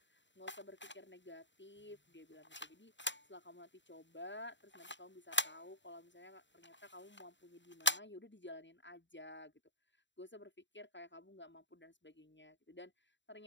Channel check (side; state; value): right; late; 0.53 ms